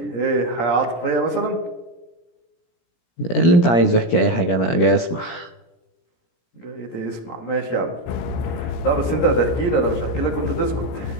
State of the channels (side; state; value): right; late; 17 ms